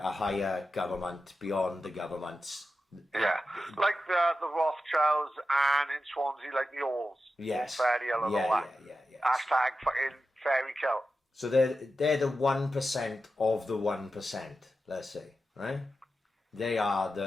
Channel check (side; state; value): both; normal; correlation 0.91